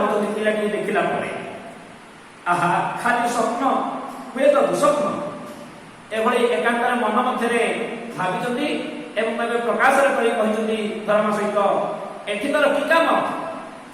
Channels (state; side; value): identical; both; correlation 1.00